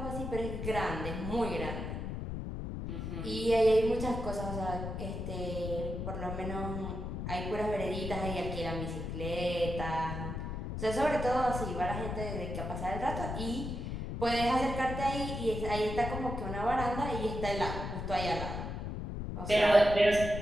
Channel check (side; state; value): left; noise; rumble, 5 dB below the sound